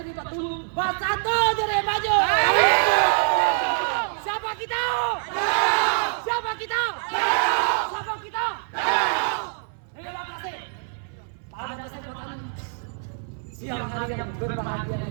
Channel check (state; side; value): silent; left; 59 dB below the other